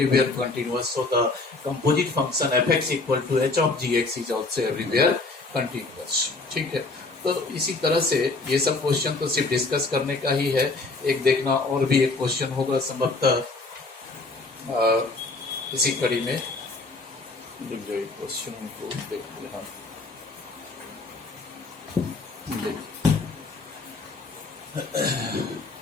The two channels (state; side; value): quieter; right; 3.5 dB